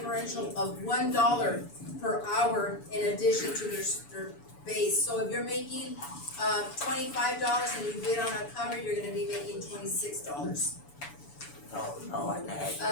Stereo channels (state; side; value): late; right; 7.0 ms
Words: of $1 per hour in addition to their base. So if you're making $25 and you bid on a cover, you're gonna be making $26. Oh, Lord,